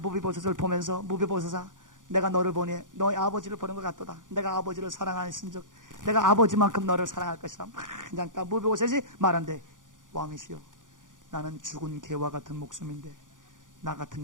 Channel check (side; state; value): left; late; 0.88 ms